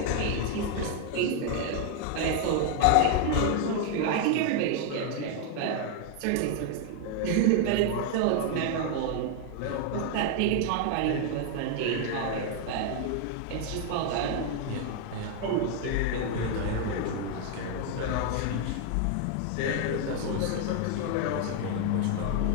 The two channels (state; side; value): different; both; correlation 0.00